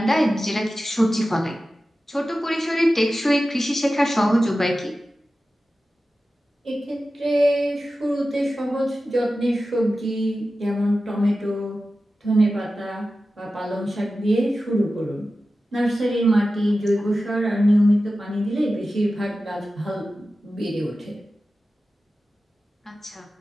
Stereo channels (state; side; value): normal; both; correlation 0.94